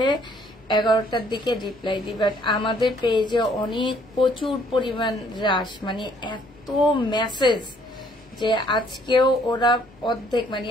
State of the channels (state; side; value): noise; left; hum, 28 dB below the sound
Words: 11টার দিকে রিপ্লাই দিই, বাট আমাদের পেজে অনেক প্রচুর পরিমাণ রাশ, মানে এত মেসেজ যে আজকেও ওরা অর্ধেক মানে